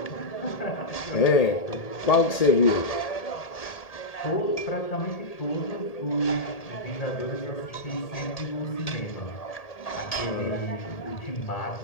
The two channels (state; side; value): late; right; 1.8 ms